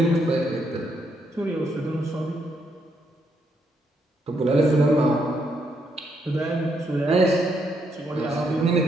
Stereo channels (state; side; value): normal; both; correlation 0.76